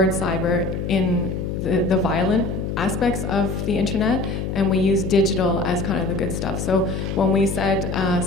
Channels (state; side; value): noise; left; hum, 3 dB below the sound